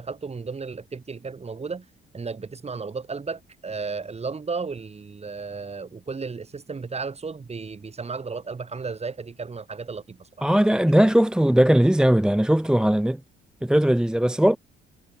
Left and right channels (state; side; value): normal; both; correlation 0.95